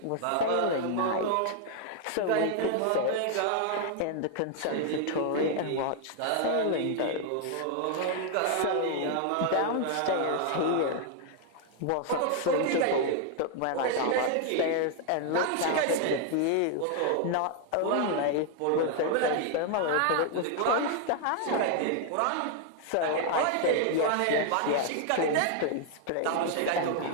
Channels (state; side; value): different; both; correlation 0.00